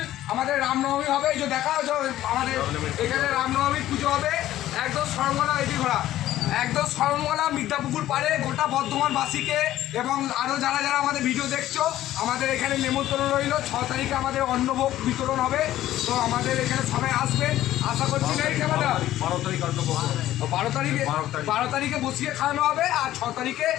আমাদের রামনবমী হবে। এই যে দেখা আমাদের এখানে রামনবমী পুজো হবে একদম সরমলা এটি ঘোরা একদম সরমলা মির্জাপুকুর পাড়ে গোটা বর্ধমানবাসীকে এবং আরও যারা যারা আমাদের ভিডিও দেখছো আমাদের এখানে নেমন্তন্ন রইল। 6 তারিখে আমাদের অন্নভোগ বিতরণ হবে। তো আমাদের এখানে সবাই আসবেন আশা করছি। নেই ক্যামেরা 12 তারিখে বসিয়ে খাওয়ানো হবে আর 6 তারিখে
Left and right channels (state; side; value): quieter; right; 13.8 dB